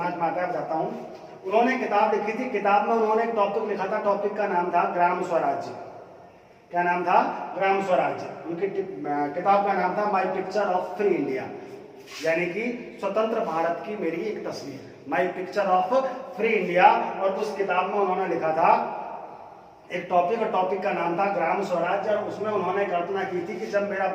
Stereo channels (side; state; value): both; identical; correlation 1.00